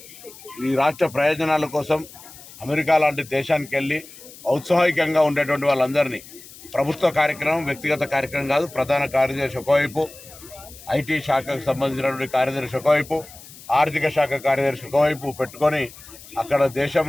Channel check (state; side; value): noise; left; hiss, 19 dB below the sound